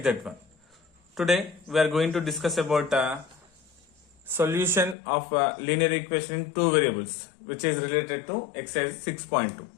that one. Today we are going to discuss about solution of linear equation in two variables, which is related to exercise 6.2.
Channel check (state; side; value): drops out; right; at 5.0 s